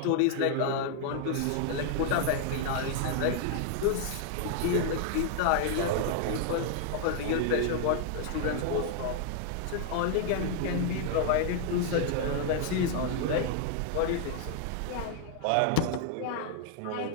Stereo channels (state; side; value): different; both; correlation 0.00